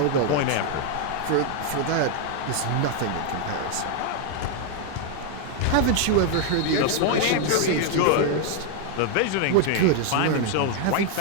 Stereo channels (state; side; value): different; both; correlation 0.01